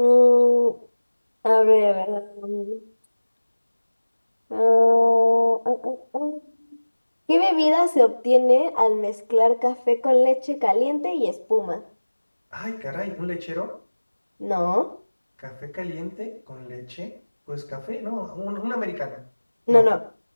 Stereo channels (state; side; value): inverted; both; correlation -1.00